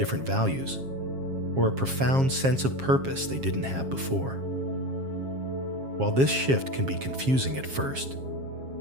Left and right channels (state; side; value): late; left; 7.4 ms